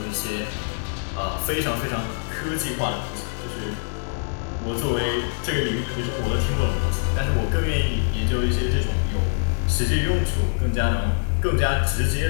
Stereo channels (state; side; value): silent; right; 60 dB below the other